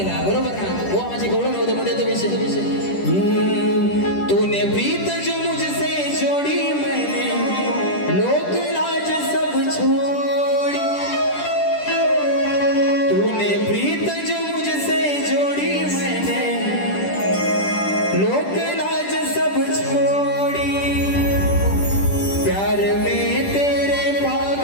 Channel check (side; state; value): right; late; 10 ms